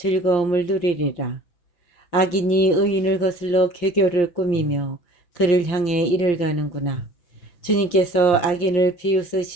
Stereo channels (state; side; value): late; right; 5.7 ms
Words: 누리리라. 악인이 의인을 거슬러 괴교를 꾸미며 그를 향해 이를 가는구나. 주님께서 악인을